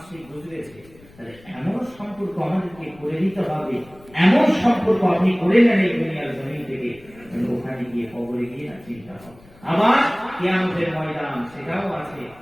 গুজরেছে, তাহলে এমন সম্পর্ক আমাদেরকে করে দিতে হবে, এমন সম্পর্ক আপনি করে নেন এই দুনিয়ার জমিন থেকে, ওখানে গিয়ে কবরে গিয়ে না চিন্তা হবে। আবার কিয়ামতের ময়দান সেটাও আছে,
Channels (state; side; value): noise; left; rumble, 24 dB below the sound